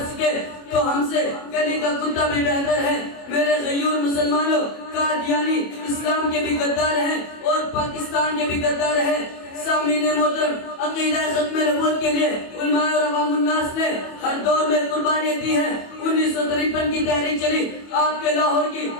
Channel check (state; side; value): late; right; 25 ms